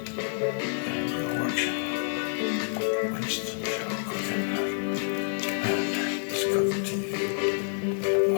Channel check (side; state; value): right; silent; digital silence